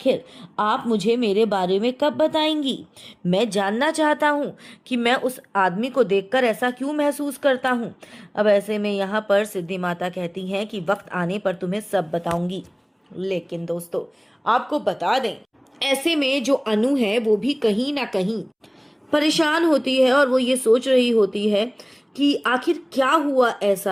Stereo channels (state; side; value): identical; both; correlation 1.00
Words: आप मुझे मेरे बारे में कब बताएंगी, मैं जानना चाहता हूँ कि मैं उस आदमी को देखकर ऐसा क्यों महसूस करता हूँ। अब ऐसे में यहाँ पर सिद्धि माता कहती हैं कि वक्त आने पर तुम्हें सब बताऊंगी। लेकिन दोस्तों आपको बता दें ऐसे में जो अनु है वो भी कहीं ना कहीं परेशान होती है और वो ये सोच रही होती है कि आखिर क्या हुआ